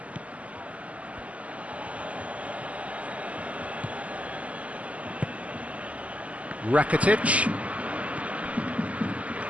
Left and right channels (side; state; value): left; late; 0.068 ms